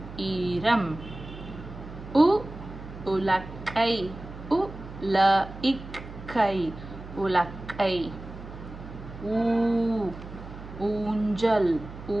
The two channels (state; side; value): noise; right; hum, 13 dB below the sound